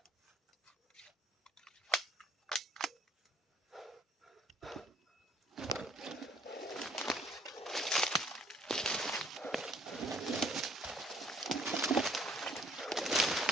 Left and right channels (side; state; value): both; normal; correlation 0.61